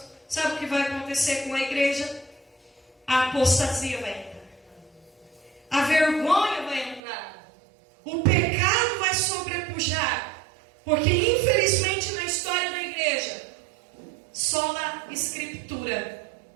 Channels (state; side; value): drops out; left; at 7.0 s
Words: Sabe o que vai acontecer com a igreja? A apostasia vai entrar. A vergonha vai entrar. O pecado vai sobrepujar. Porque infelizmente na história da igreja, só a escritura